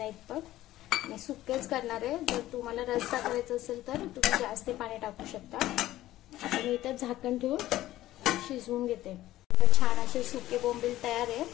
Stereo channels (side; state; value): right; quieter; 15.0 dB